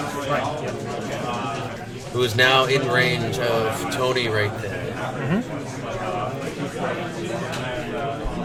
who is now in range of Tony right there.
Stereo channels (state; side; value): identical; both; correlation 1.00